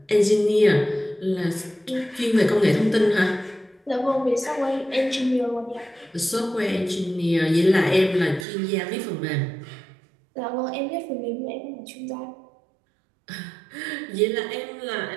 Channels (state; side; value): drops out; left; at 8.5 s